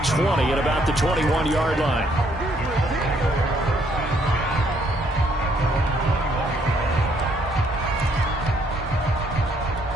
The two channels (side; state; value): both; normal; correlation 0.68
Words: 20 at about the 21-yard line.